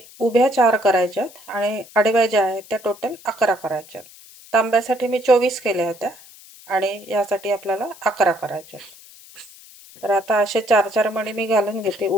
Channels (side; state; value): left; noise; hiss, 21 dB below the sound